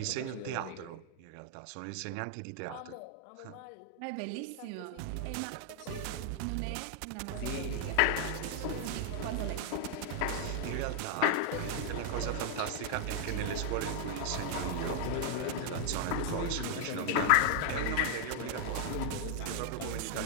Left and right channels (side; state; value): both; different; correlation 0.00